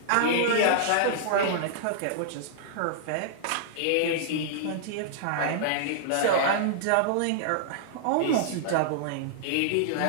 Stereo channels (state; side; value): different; both; correlation -0.01